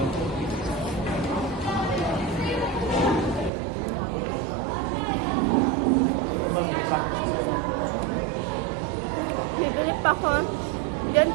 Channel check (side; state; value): left; drops out; at 3.5 s